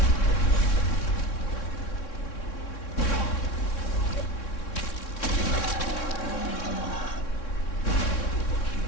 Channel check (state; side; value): late; right; 3.6 ms